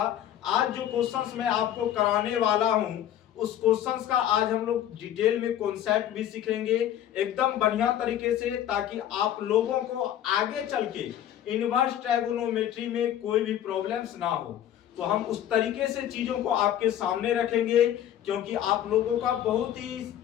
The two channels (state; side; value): quieter; right; 11.3 dB